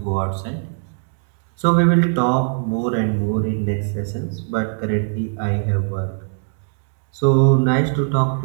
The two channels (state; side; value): silent; left; 64 dB below the other